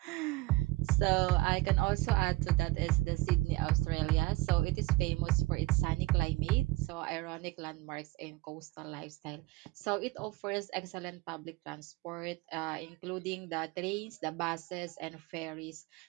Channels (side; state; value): left; quieter; 20.2 dB